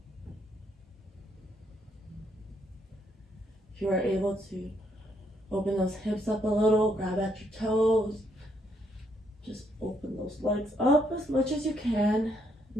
If you are able to open those hips up a little, grab at your toes. Just open those legs up as much as you can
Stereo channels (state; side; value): normal; both; correlation 0.73